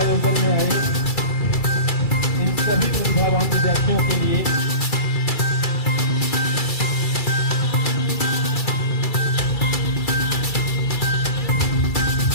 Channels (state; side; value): late; right; 2.3 ms